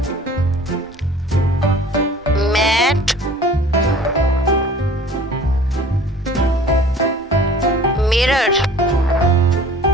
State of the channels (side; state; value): both; normal; correlation 0.48